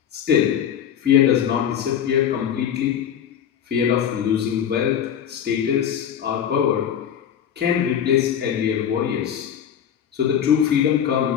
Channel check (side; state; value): right; quieter; 9.1 dB